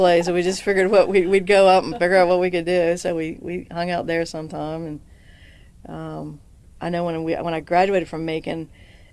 So we just figured we'd go up and figure out what we could do. So we hung out there sometime. And I know when I graduated from Macon,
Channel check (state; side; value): identical; both; correlation 1.00